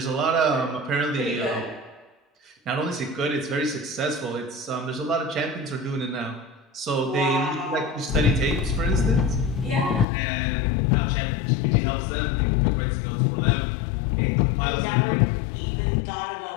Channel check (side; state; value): right; drops out; at 10.1 s